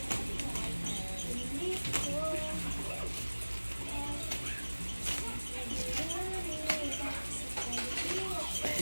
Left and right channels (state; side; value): inverted; both; correlation -1.00